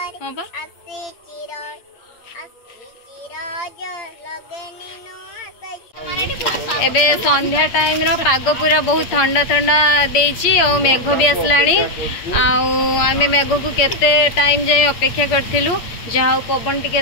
हां बा आसी चिरज लगेनी नुआ एबे संध्या टाइम रो पाग पूरा बहुत ठंडा ठंडा देछि और मेघ भी आसलानी आमे मेघ को केते टाइम जाय अपेक्षा करथिलु जहा पवन टिके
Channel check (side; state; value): right; late; 8.5 ms